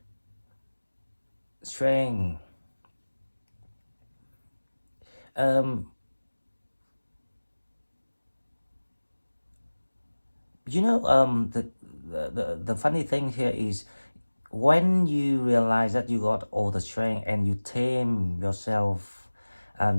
strength. The funny thing here is when you realize that you got all the strength and you tame yourself,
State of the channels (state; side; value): inverted; both; correlation -1.00